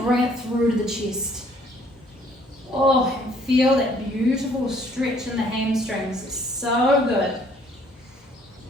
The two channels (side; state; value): both; normal; correlation 0.61